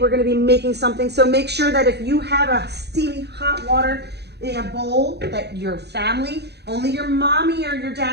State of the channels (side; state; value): left; late; 0.48 ms